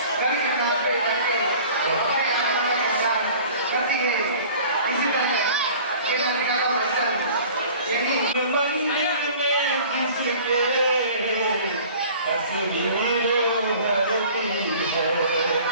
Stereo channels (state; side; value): inverted; both; correlation -0.46